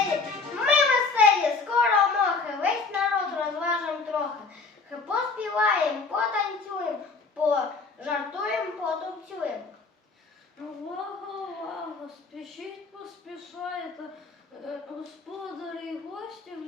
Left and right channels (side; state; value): right; quieter; 4.3 dB